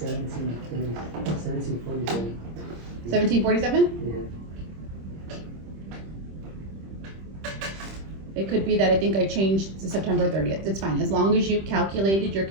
1747? Yeah. It could be that I think I changed to September 30th. It's fine, as long as you calculated your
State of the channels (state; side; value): late; left; 26 ms